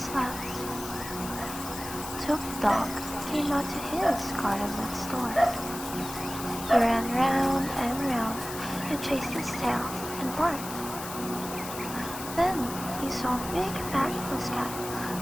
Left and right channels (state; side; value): noise; left; hiss, 10 dB below the sound